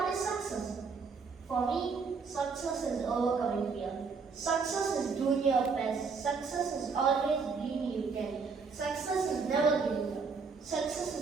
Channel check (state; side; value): quieter; left; 5.1 dB